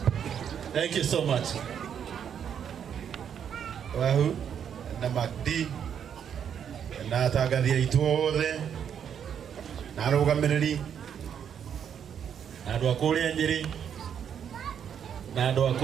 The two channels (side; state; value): left; quieter; 8.3 dB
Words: Thank you so much. Wahu na Macdee na Atangathi aitũ othe na arũgamĩrĩri na andũ a kũrĩa Nyĩrĩ na andũ a